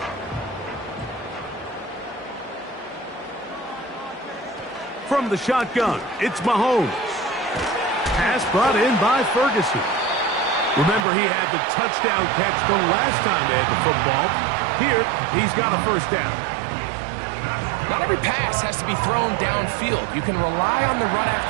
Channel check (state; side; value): drops out; left; at 11.1 s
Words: From the shotgun, it's Mahomes. Pass brought in by Ferguson. Remember, he had the touchdown catch the last time they had the football. Here, he's got a first down. Not every pass has to be thrown downfield. You can rely on the run